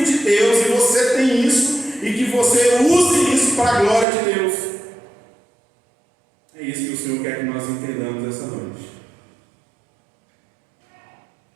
de Deus, e você tem isso, e que você use isso para a glória de Deus. É isso que o Senhor quer que nós entendamos essa noite.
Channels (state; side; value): drops out; left; at 4.0 s